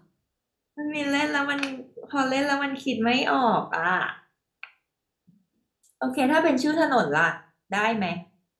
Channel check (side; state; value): both; identical; correlation 1.00